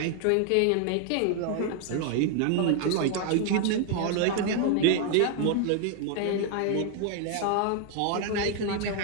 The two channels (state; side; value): different; both; correlation 0.00